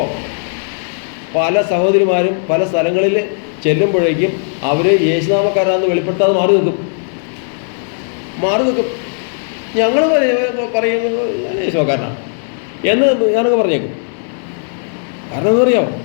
പല സഹോദരിമാരും പല സ്ഥലങ്ങളിൽ ചെല്ലുമ്പോഴേക്കും അവർ യേശുനാമക്കാരാണെന്ന് വെളിപ്പെടുത്താതെ മാറി നിൽക്കും. ഞങ്ങൾ പറയുന്നത് യേശുക്കാരനാണ് എന്ന് ഞാനൊക്കെ പറഞ്ഞേക്കും. കാരണം എന്താ അറിയാമോ?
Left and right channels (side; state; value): right; silent; digital silence